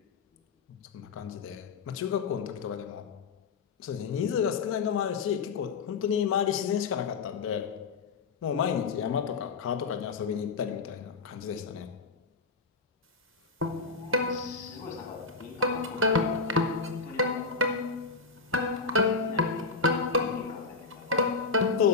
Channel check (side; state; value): right; quieter; 4.6 dB